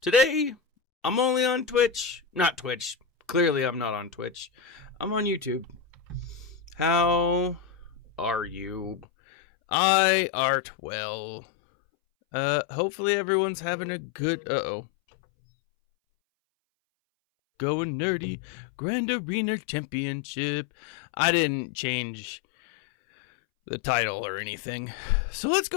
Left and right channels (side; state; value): right; drops out; at 9.1 s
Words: Today, I'm only on Twitch. Not Twitch. Clearly, I'm not on Twitch. I'm on YouTube. How are you? I art well. Hopefully everyone's having a good... Going nerdy. Grand Arena Championship. I didn't change the title or anything. So let's